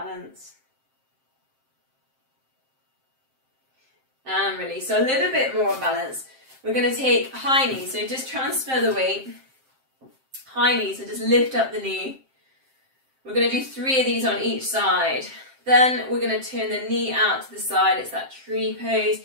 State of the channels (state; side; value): late; left; 7.6 ms